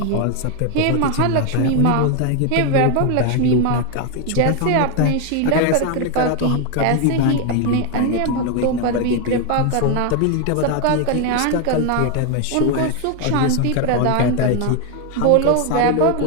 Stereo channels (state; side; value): different; both; correlation 0.01